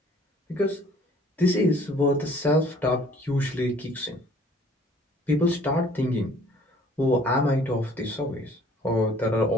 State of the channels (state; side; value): normal; both; correlation 0.55